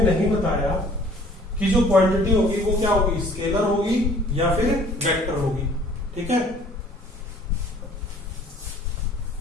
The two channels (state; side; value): normal; both; correlation 0.53